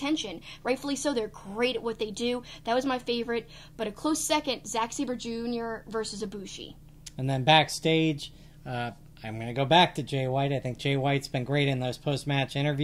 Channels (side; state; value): both; identical; correlation 1.00